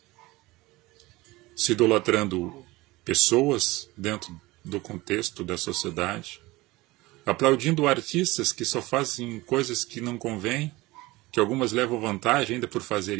Se idolatrando pessoas dentro do contexto da sociedade, aplaudindo artistas que só fazem coisas que não convêm, que algumas levam vantagem ainda por fazer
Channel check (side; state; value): left; quieter; 20.5 dB